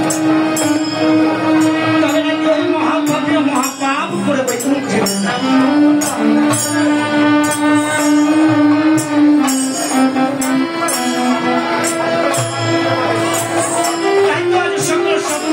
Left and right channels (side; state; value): both; identical; correlation 1.00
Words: তবে নাকি ওই মহাভাবীয় মহাপাপ করে বৈকুণ্ঠ